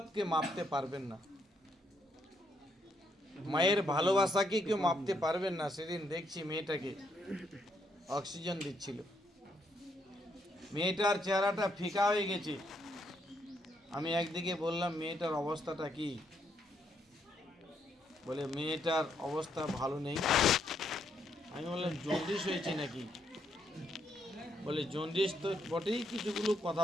মাপতে পারবেন না, মায়ের ভালোবাসাকে কেউ মাপতে পারবেন না। সেদিন দেখছি মেয়েটাকে অক্সিজেন দিচ্ছিল, মেয়েটার চেহারাটা ফিকা হয়ে গেছে। আমি একদিকে বললাম মেয়েটার অবস্থাটা কি, বলে মেয়েটার অবস্থা ভালো নেই। আমি বললাম জন্ডিস হয়েছে নাকি, বলে জন্ডিস তো বটেই, কিছুগুলো কথা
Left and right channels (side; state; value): both; normal; correlation 0.75